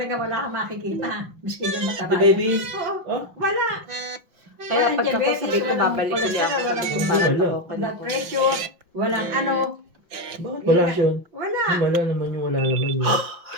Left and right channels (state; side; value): late; left; 5.7 ms